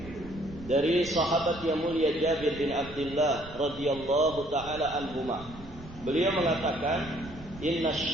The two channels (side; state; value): right; noise; rumble, 17 dB below the sound